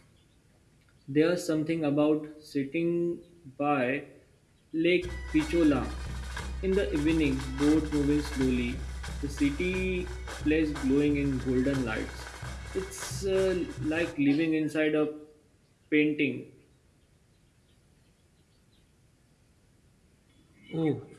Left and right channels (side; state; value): both; identical; correlation 1.00